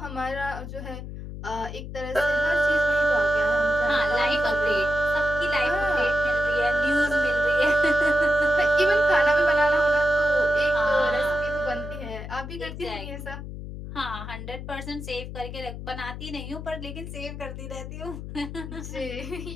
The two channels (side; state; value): left; noise; hum, 9 dB below the sound